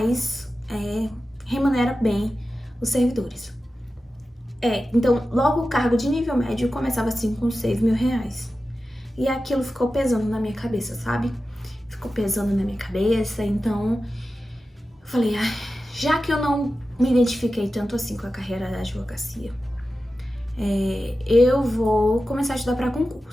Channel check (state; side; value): normal; both; correlation 0.93